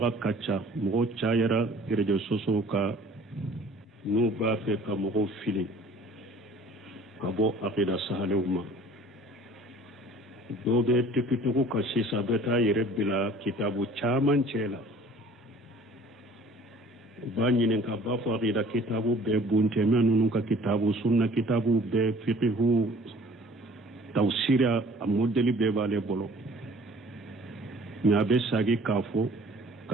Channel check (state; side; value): normal; both; correlation 0.51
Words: ka ca mɔgɔ cayara réseaux sociaux ka n'u b'a fɛ ka mɔgɔw fili ka bɔ akida sahalew ma dɔw bɛ tikitigiw ka sisan bɛ taa yɛrɛ bila kitabu caman cɛ la b'a ɲininka b'a fɔ akida kitabu bɛɛ buntɛmɛ ninnu ka kitabu sunna kitabu bɛɛ fiqhu tawsira a modèle bɛɛ b'ale bolo mais a bɛ sagi k'a fɔ